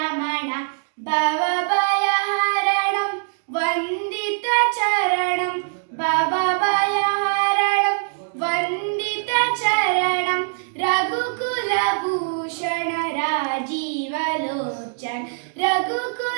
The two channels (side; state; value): left; silent; digital silence